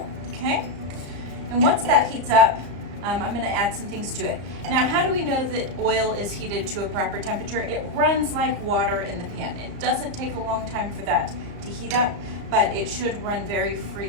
okay? And once that heats up, I'm going to add some things to it. Now, how do we know that oil is heated to a proper temperature? It runs like water in the pan. It doesn't take a long time for that to heat up, but it should run very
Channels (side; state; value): left; late; 34 ms